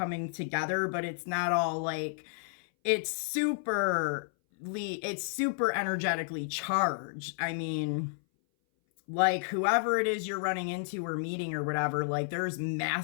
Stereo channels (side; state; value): right; silent; 57 dB below the other